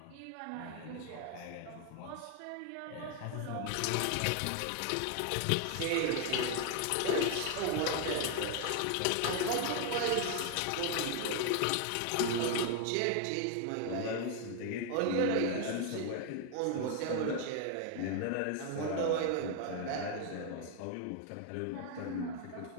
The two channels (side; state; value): both; different; correlation 0.01